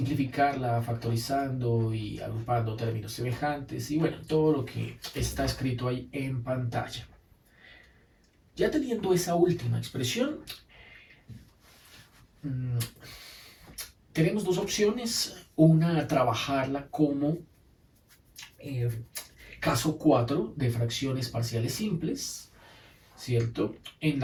factorizando y agrupando términos semejantes, y bueno, todo lo que está escrito ahí en pantalla. Ya teniendo esa última expresión, tenemos dos opciones. Una, trabajarla como caso 4 de fracciones parciales simples, ¿cierto? En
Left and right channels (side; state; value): both; identical; correlation 1.00